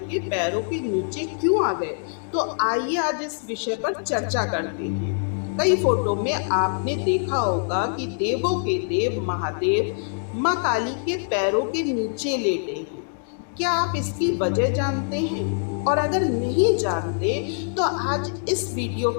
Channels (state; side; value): silent; right; digital silence